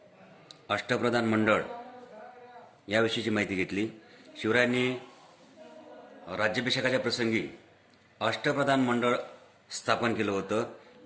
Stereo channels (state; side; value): identical; both; correlation 1.00